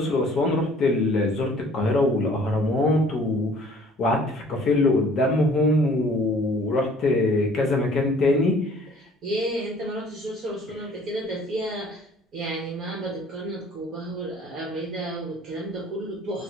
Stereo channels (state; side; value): normal; both; correlation 0.54